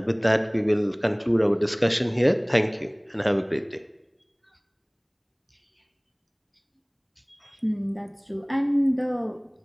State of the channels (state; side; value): identical; both; correlation 1.00